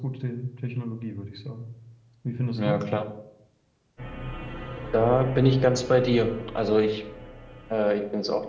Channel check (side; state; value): both; identical; correlation 1.00